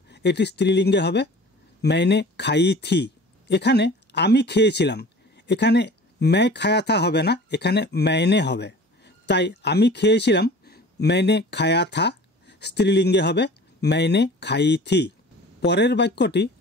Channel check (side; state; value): both; normal; correlation 0.43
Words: এটি স্ত্রীলিঙ্গে হবে मैंने खाई थी। এখানে আমি খেয়েছিলাম, এখানে मैं खाया था হবে না, এখানে मैंने হবে, তাই আমি খেয়েছিলাম मैंने खाया था স্ত্রীলিঙ্গে হবে मैंने खाई थी। পরের বাক্যটি